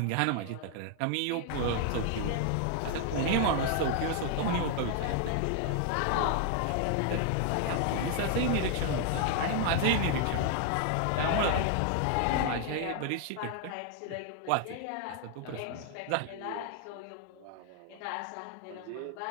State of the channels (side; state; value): both; different; correlation 0.00